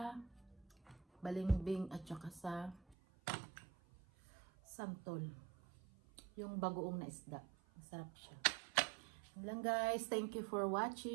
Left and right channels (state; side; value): drops out; left; at 3.0 s